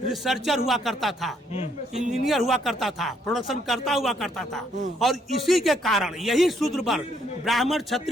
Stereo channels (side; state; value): both; normal; correlation 0.70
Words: हुआ करता था, इंजीनियर हुआ करता था, प्रोडक्शन करता हुआ करता था, और इसी के कारण यही शूद्र वर्ग ब्राह्मण,